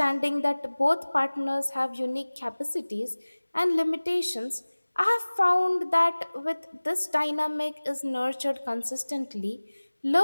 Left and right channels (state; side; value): inverted; both; correlation -1.00